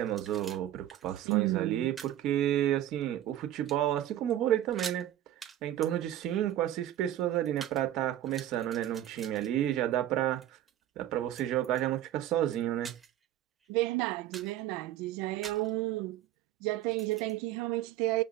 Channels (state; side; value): quieter; left; 12.6 dB